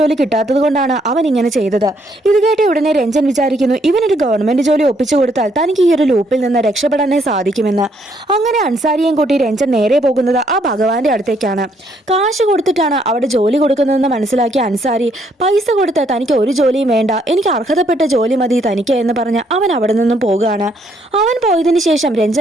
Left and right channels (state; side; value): normal; both; correlation 0.70